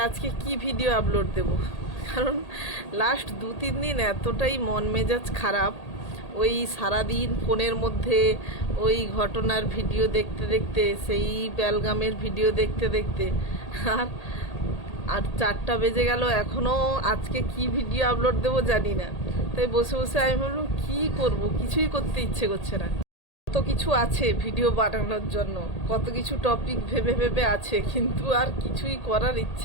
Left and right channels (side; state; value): right; late; 1.8 ms